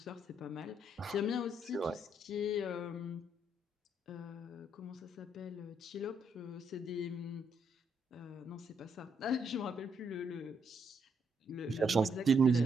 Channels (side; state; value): both; normal; correlation 0.74